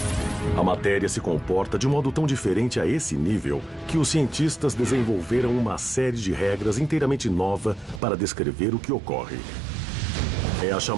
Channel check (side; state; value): left; drops out; at 8.0 s